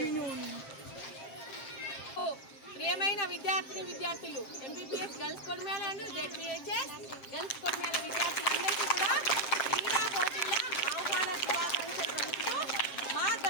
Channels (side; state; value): right; late; 7.5 ms